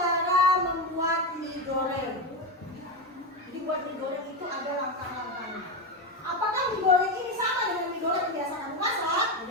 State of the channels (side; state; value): both; normal; correlation 0.14